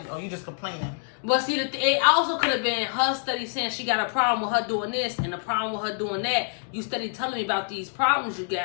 oh, you just complaining. But see, it also could have been her study saying she got a problem with her doing this and a problem with her doing that. You study telling me about these problems you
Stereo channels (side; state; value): right; silent; 60 dB below the other